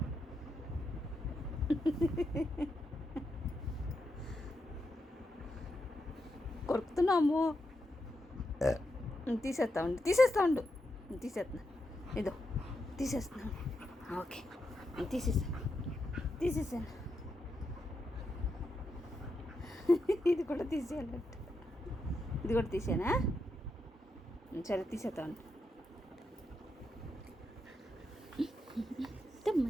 కొరుకుతున్నాము. తీసేస్తా ఉండు తీసేస్తున్నా. ఇదో తీసేస్తున్నాను. ఓకే తీసేసాను. ఇది కూడా తీసేయాలంట. ఇది కూడా తీసేనా? సరే తీసేస్తాను.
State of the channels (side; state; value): both; normal; correlation 0.84